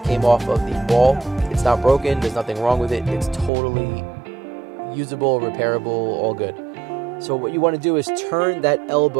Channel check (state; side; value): drops out; left; at 3.5 s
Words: off of the wall. It's not broken, there's nothing wrong with it. It's totally usable, repairable, all good. So what you want to do is turn that